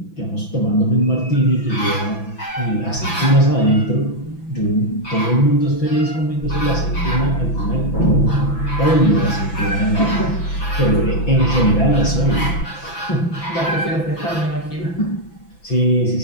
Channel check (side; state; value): right; late; 6.0 ms